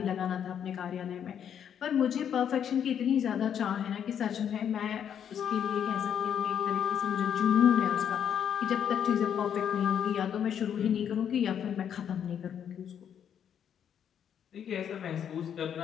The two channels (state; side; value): quieter; right; 8.7 dB